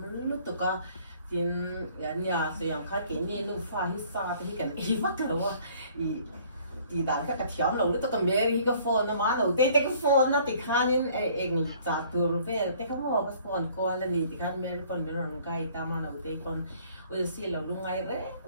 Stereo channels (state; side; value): inverted; both; correlation -0.57